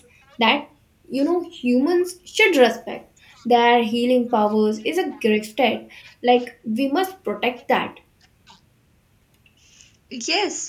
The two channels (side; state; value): both; identical; correlation 1.00